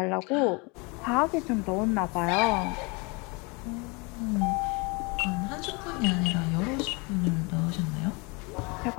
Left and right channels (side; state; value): right; quieter; 29.1 dB